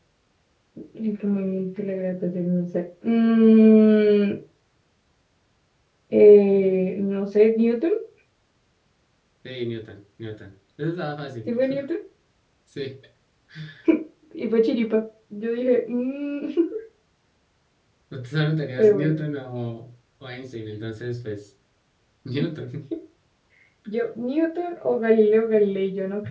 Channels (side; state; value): both; identical; correlation 1.00